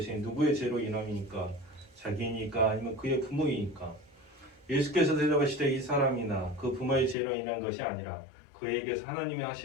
누구의 죄로 인함이니까? 자기니까 아니면 그의 부모이니까? 예수께서 대답하시되 이 사람이나 그 부모의 죄로 인한 것이 아니라 그에게서 하나님이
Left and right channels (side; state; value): right; drops out; at 7.2 s